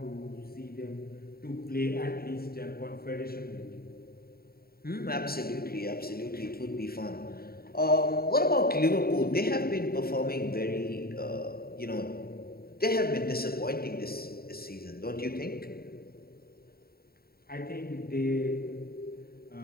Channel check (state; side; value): late; right; 0.44 ms